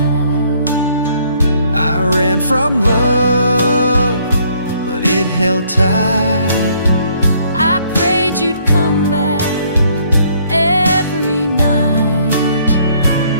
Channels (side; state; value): both; inverted; correlation -0.65